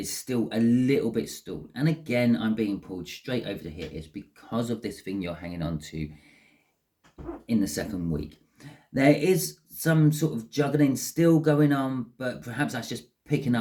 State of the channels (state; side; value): identical; both; correlation 1.00